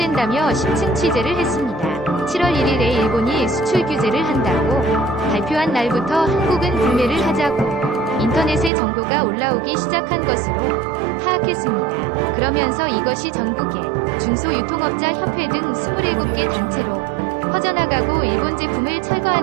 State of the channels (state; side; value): drops out; left; at 8.7 s